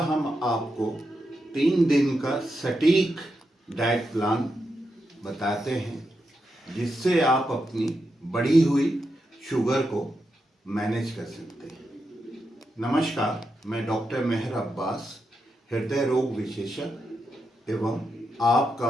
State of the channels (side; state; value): both; normal; correlation 0.85